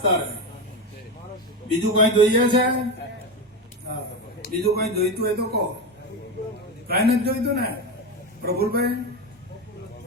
તારે બીજું કઈ જોઈએ છે? હા, બીજું કઈ જોઈતું હોય તો કહો. કઈ નથી જોઈતું ને પ્રફુલભાઈ?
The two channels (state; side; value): normal; both; correlation 0.17